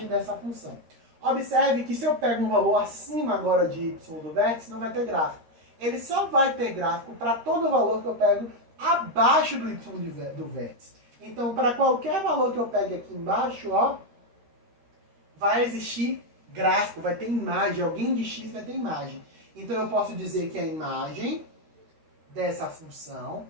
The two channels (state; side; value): late; left; 13 ms